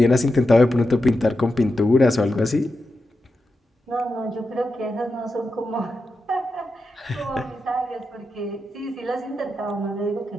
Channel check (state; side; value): normal; both; correlation 0.88